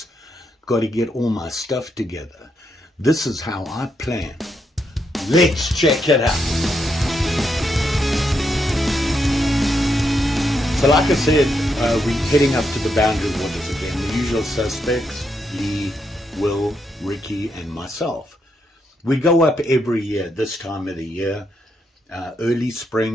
Got to get all my stuff together. This is how I plan. Let's check it out. So like I said, we're heading up to the boundary waters again. The usual suspects, Lee, Will, Ricky and myself. We go up every year, this time of the year. Early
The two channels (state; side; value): normal; both; correlation 0.80